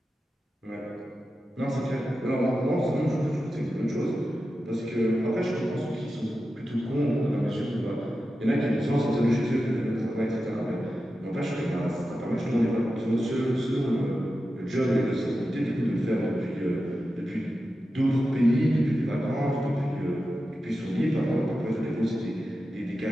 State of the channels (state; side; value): normal; both; correlation 0.91